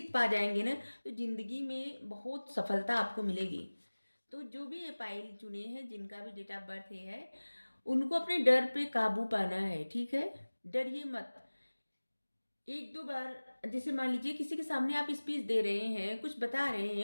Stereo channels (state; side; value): inverted; both; correlation -1.00